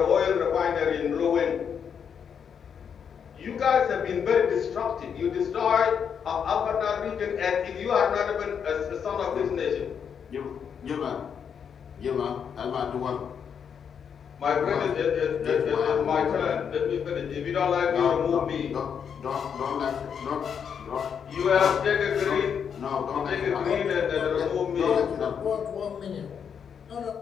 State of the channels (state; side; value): quieter; right; 7.4 dB